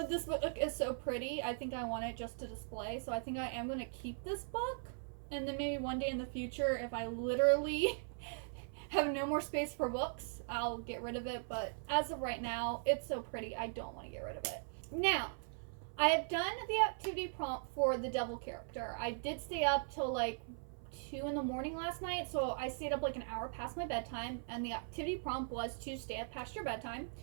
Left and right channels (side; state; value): left; silent; 51 dB below the other